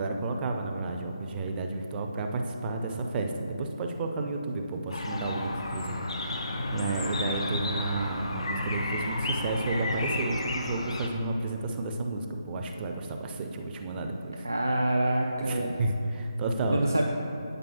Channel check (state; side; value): inverted; both; correlation -0.76